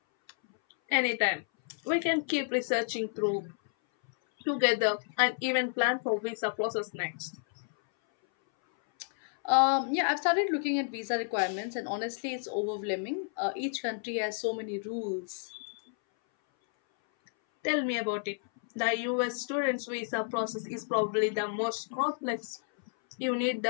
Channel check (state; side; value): silent; right; 57 dB below the other